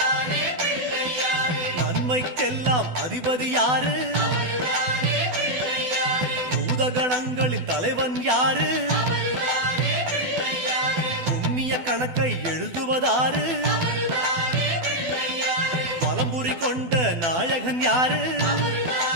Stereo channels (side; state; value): left; late; 12 ms